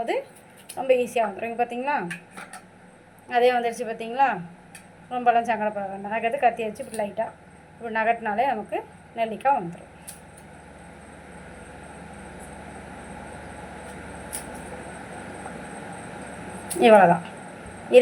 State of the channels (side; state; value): both; identical; correlation 1.00